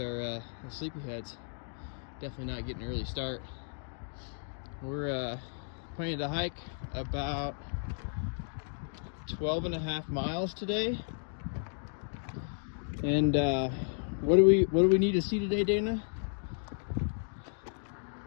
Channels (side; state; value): right; silent; digital silence